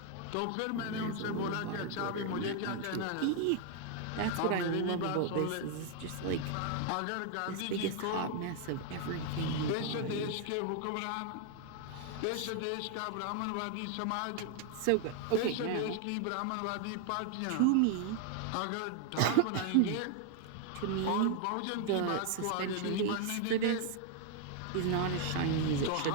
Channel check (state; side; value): different; both; correlation 0.00